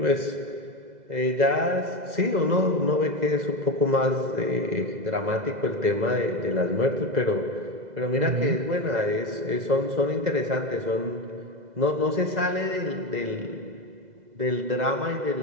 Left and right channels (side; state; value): left; late; 2.0 ms